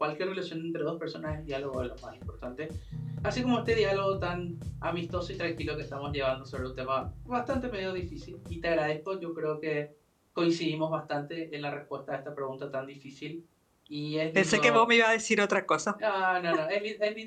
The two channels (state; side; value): identical; both; correlation 1.00